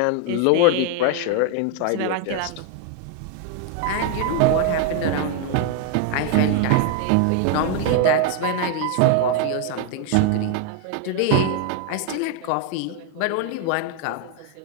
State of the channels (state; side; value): different; both; correlation 0.01